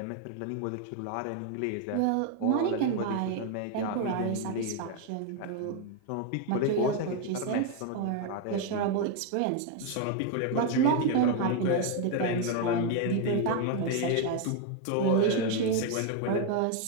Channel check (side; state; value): both; different; correlation 0.01